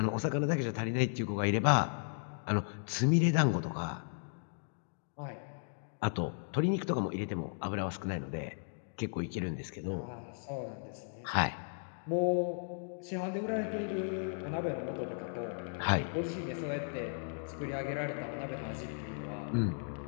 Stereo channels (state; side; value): silent; right; digital silence